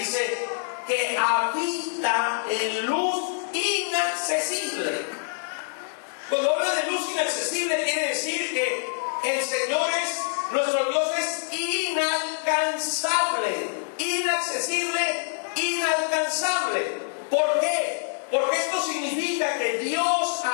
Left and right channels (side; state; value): right; silent; 61 dB below the other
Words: que habita en luz inaccesible. Cuando habla de luz inaccesible, quiere decir que el Señor nuestro Dios es inalcanzable, inaccesible, inalcanzable. ¿Por qué? Porque esto significa que Dios